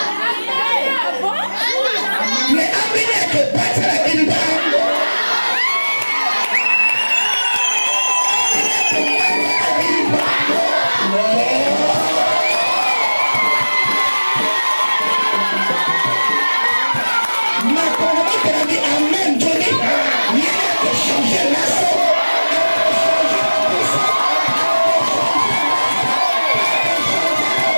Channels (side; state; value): both; inverted; correlation -1.00